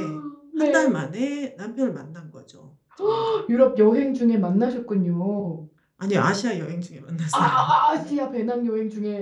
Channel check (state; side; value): identical; both; correlation 1.00